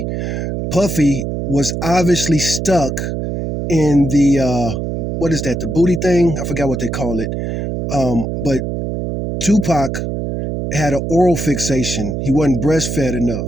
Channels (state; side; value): noise; right; hum, 3 dB below the sound